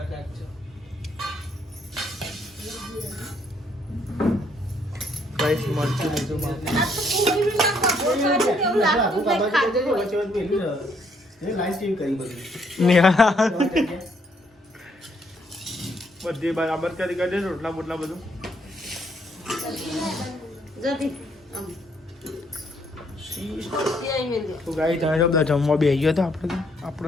ગાઈસ મરચું લીધું બધી બરાબર કરી કરી રોટલા બોટલા બધું. તો ગાઈ તમે તો બધા જમવા બેસી ગયો હતો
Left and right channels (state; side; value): normal; both; correlation 0.69